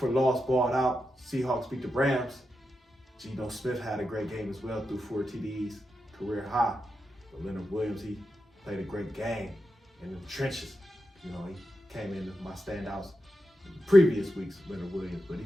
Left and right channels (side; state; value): both; normal; correlation 0.88